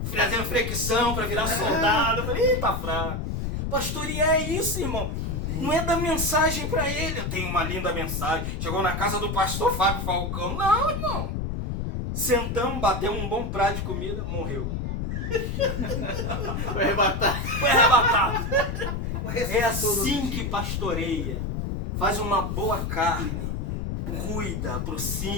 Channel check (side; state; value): left; noise; rumble, 3 dB below the sound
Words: fazendo flexão para virar soldado. Eu falei, tá fraco. Pastorear é isso, irmão. Não é dar mensagem para ele. Eu tenho uma linda mensagem. Chegou na casa do pastor Fábio Falcão. Não, irmão. Sentamos, batemos um bom prato de comida, morreu. Foi arrebatado. Foi arrebatado. É assim que pastoreia. Faz uma boa carne. Cuida,